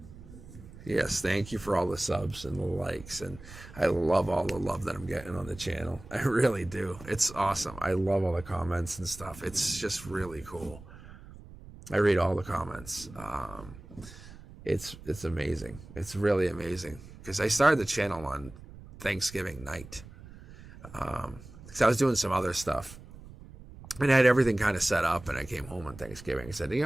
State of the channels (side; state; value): right; noise; rumble, 17 dB below the sound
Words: Yes, thank you for all the subs and the likes, and I love all the love that I'm getting on the channel. I really do. It's awesome. I love all the comments and stuff. It's just really cool. I read all the comments. It's amazing. It's really amazing, because I started the channel on Thanksgiving night. Because I was doing some other stuff, and I had everything kind of set up, and I came home on Thanksgiving. I said, you